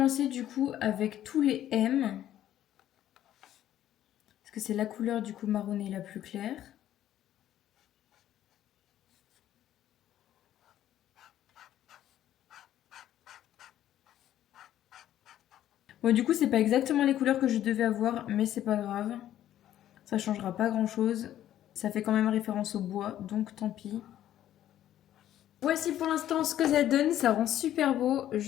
du coup avec tous les M. Parce que c'est la couleur du coup marronné la plus claire. Bon, du coup, c'est pas exactement les couleurs que je devais avoir, mais c'est pas grave. Ça changera pas grand chose. Ça fait quand même référence au bois, donc tant pis. Voici pour l'instant ce que ça donne. Ça rend super beau.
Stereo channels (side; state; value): right; quieter; 12.0 dB